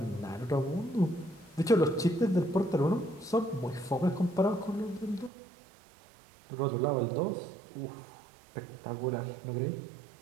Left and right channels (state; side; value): drops out; left; at 5.3 s